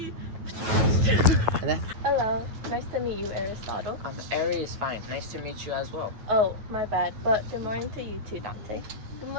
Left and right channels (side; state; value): left; late; 9.2 ms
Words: Hello, nice to meet you, Aristotle. Ari is fine. Nice to meet you as well. Oh, my bad, but good morning to you too, Dante. Good